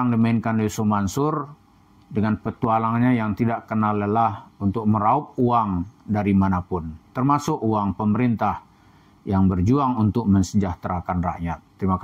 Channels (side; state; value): both; identical; correlation 1.00